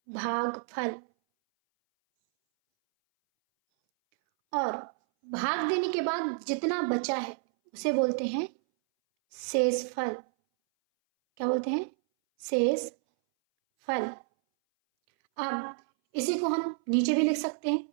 भागफल। और भाग देने के बाद जितना बचा है उसे बोलते हैं शेषफल। क्या बोलते हैं? शेषफल। अब इसी को हम नीचे भी लिख सकते हैं।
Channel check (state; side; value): silent; left; 58 dB below the other